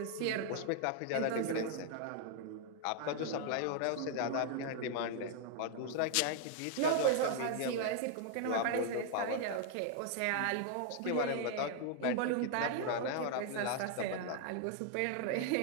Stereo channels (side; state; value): both; different; correlation 0.00